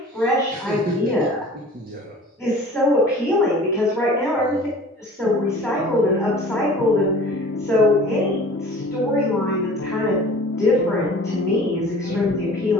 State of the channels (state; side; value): normal; both; correlation 0.44